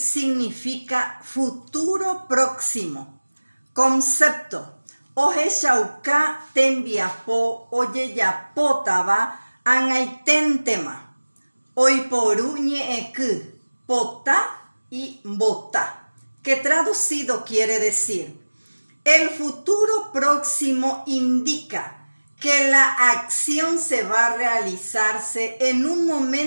futuro próximo. Concepto. Oje shauka tembiapo oyeyapotaba angaitentema. Oiporu ñeeku, pota y bota, que traducido quiere decir: el futuro próximo indica que la acción se va a realizarse en un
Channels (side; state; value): both; inverted; correlation -1.00